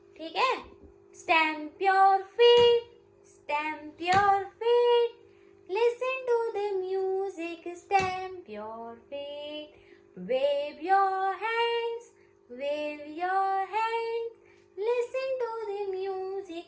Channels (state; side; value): identical; both; correlation 1.00